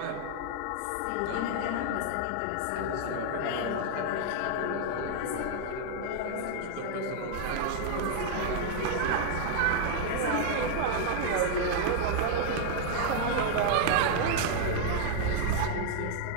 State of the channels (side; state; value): both; different; correlation -0.01